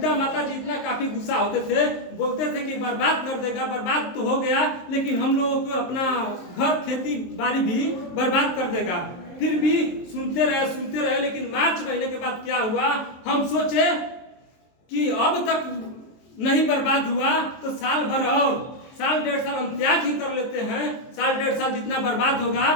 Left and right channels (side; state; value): right; late; 23 ms